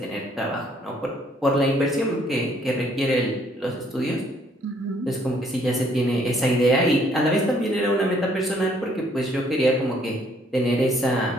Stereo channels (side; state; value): both; normal; correlation 0.65